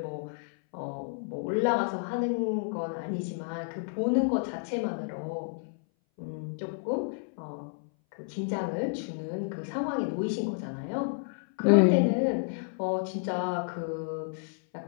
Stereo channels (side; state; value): right; silent; 57 dB below the other